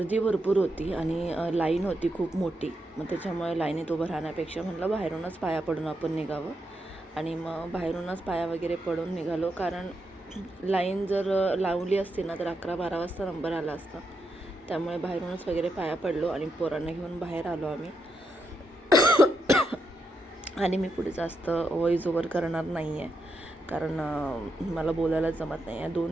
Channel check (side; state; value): both; normal; correlation 0.83